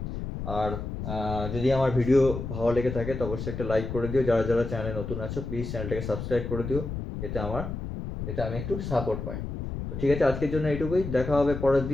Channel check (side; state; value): left; noise; rumble, 6 dB below the sound